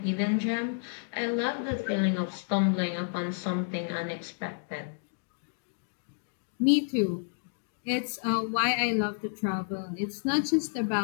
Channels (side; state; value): right; silent; digital silence